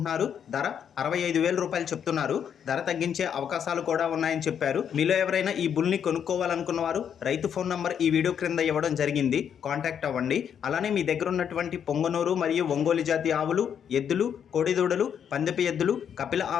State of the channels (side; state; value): right; quieter; 8.3 dB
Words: ధర 65,000 రూపాయలు చెప్తున్నారు. ధర తగ్గించే అవకాశాలు కూడా ఉన్నాయని చెప్పారు. మీలో ఎవరైనా ఈ బుల్ని కొనుక్కోవాలనుకున్న వారు రైతు ఫోన్ నంబర్ ఈ వీడియో క్రింద ఇవ్వడం జరిగింది. కాంటాక్ట్ అవ్వండి. అలానే మీ దగ్గర ఉన్నటువంటి పొంగనూరు మరియు ఒంగోలు జాతి ఆవులు, ఎద్దులు, కోడిదూడలు, పందెపు ఎద్దులు, కపిల